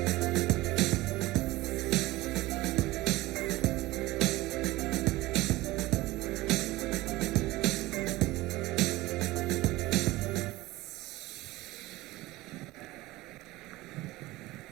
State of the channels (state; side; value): quieter; left; 19.0 dB